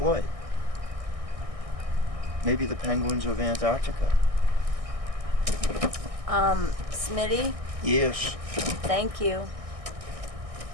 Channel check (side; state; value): left; late; 1.6 ms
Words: Maybe the penguins of Antarctica. Smitty, Yes. thank you.